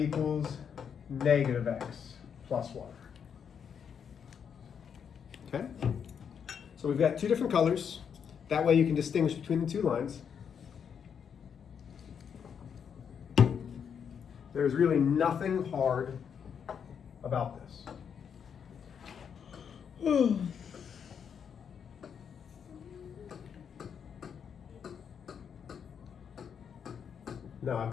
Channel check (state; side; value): quieter; right; 7.4 dB